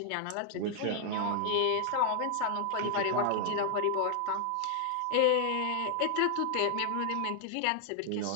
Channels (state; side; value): different; both; correlation 0.00